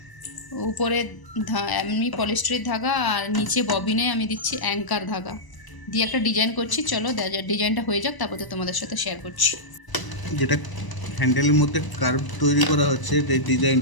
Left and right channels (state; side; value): late; right; 1.0 ms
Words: উপরে এমনি পলিস্টারের ধাগা আর নিচে ববিনে আমি দিচ্ছি অ্যাঙ্কার ধাগা দিয়ে একটা ডিজাইন করছি। চলো ডিজাইনটা হয়ে যাক, তারপরে তোমাদের সাথে শেয়ার করছি। যেটা হ্যান্ডেলের মধ্যে কার্ভ তৈরি করা হচ্ছে, এই